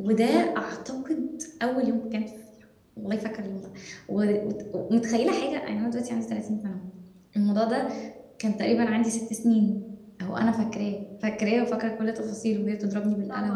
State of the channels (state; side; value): identical; both; correlation 1.00